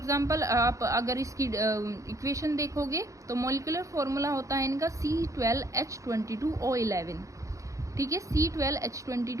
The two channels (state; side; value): late; left; 0.15 ms